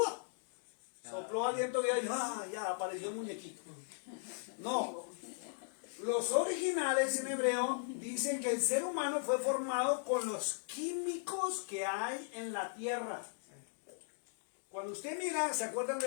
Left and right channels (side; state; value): right; silent; digital silence